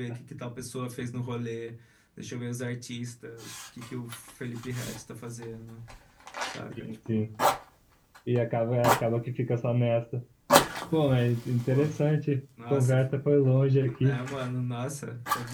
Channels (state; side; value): identical; both; correlation 1.00